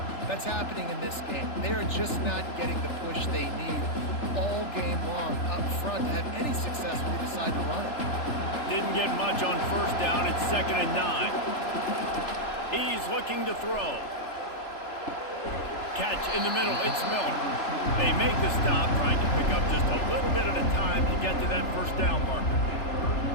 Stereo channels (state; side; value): late; right; 3.4 ms